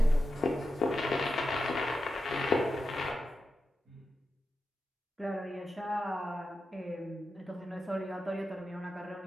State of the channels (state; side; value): normal; both; correlation 0.89